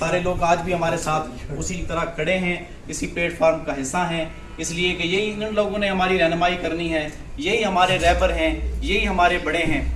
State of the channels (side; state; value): both; identical; correlation 1.00